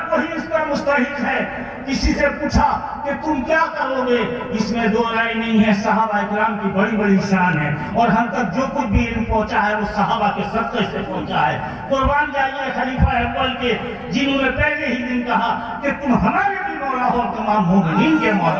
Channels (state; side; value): identical; both; correlation 1.00